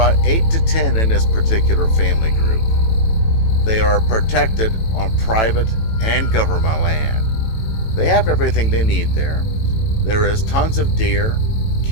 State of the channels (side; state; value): right; late; 18 ms